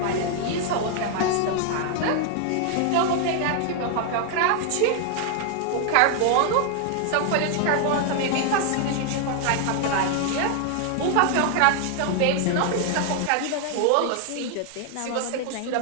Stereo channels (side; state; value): both; different; correlation 0.00